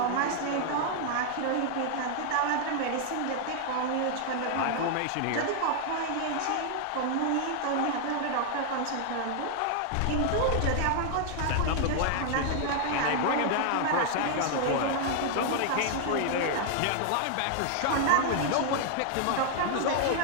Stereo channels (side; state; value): both; different; correlation 0.00